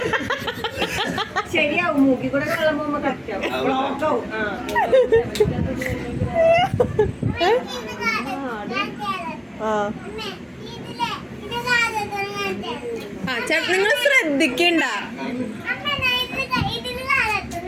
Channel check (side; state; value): both; identical; correlation 1.00